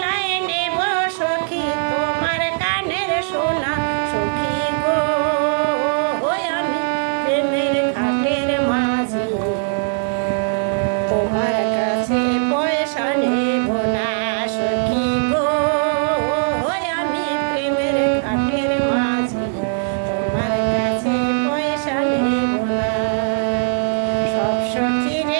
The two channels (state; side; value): silent; left; digital silence